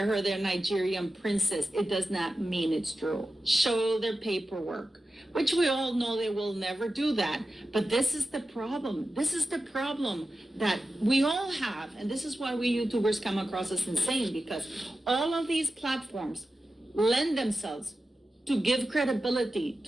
her their Nigerian princess, it does not mean it's true. Show their paperwork, which we all know they will never do that. But this is the problem. This is the problem that we all have. And this is why we YouTubers come across as insane, because all of these platforms lend themselves to give credibility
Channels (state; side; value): normal; both; correlation 0.93